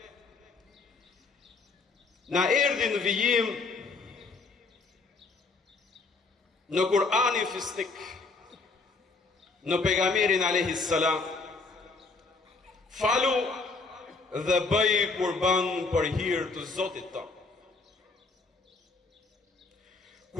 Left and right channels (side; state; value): right; quieter; 4.0 dB